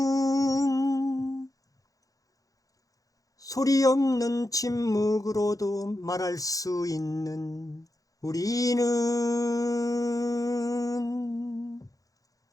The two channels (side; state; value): right; late; 0.17 ms